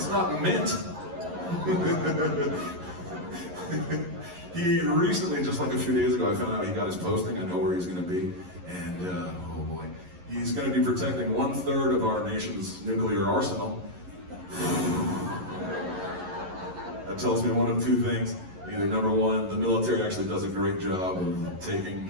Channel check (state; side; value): late; left; 11 ms